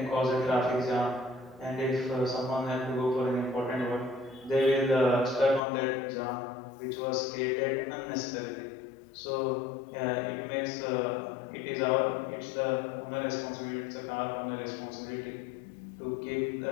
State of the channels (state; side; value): drops out; right; at 5.6 s